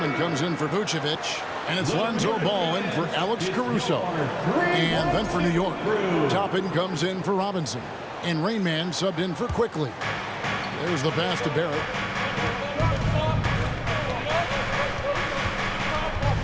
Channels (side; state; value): both; identical; correlation 1.00